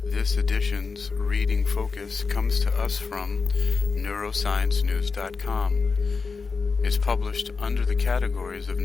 This edition's reading focus comes to us from neurosciencenews.com. It's published under the categories of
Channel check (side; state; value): right; quieter; 4.7 dB